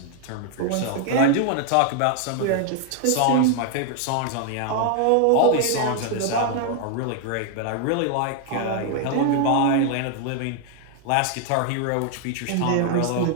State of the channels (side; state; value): both; different; correlation 0.00